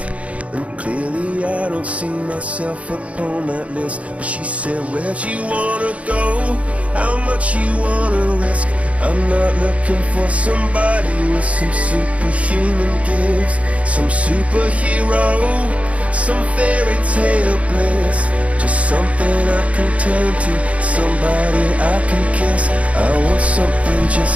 And clearly I don't see myself upon that list. But she said, where'd you wanna go? How much you wanna risk? I'm not looking for somebody with some superhuman gifts, some superhero, some fairy tale bliss. Just something I can turn to, somebody I can kiss. I want something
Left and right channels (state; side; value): late; left; 0.065 ms